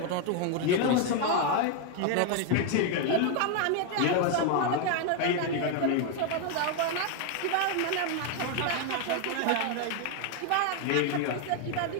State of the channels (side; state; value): both; different; correlation 0.01